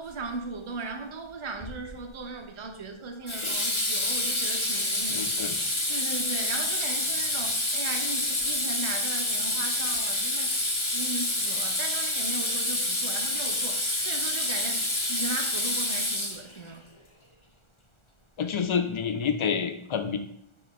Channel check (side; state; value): right; late; 1.4 ms